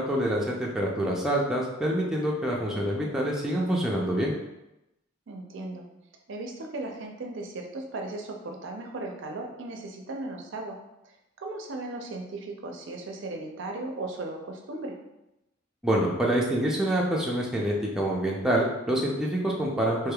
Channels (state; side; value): normal; both; correlation 0.59